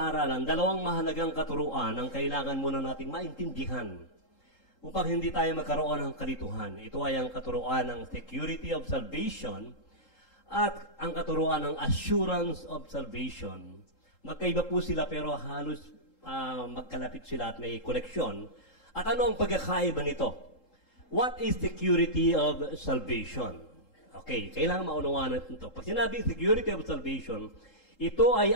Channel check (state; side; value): late; right; 3.8 ms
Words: dalawang mahalagang katuruan ang kailangan muna nating maintindihan upang hindi tayo magkaroon ng kalituhan. Ito ay ang katuruan ng security of salvation at ang katuruan ng assurance of salvation. Magkaiba po sila pero halos magkalapit sila at may koneksyon. At ano ang pagkakaiba nito? What is security of salvation? Okay, kailangan maunawaan natin ito. Pag sinabing security of salvation, ito ay